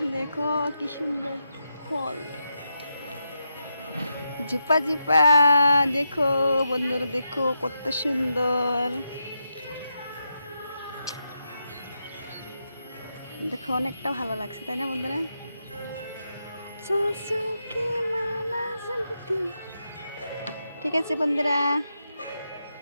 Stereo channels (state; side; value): inverted; both; correlation -0.85